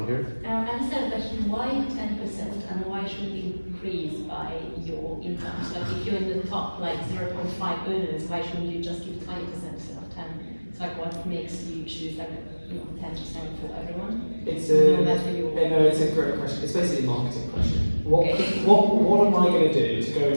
here. I just have a question. Why 10% and why should it increase by your income? So like if you're in the top like 0.5 earners, why shouldn't you just give 20% instead of 10? It's like what makes you choose like 10% for everyone? It's no matter your... it's a great question. It's basically a marketing question. What am I going to do to go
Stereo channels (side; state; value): both; inverted; correlation -1.00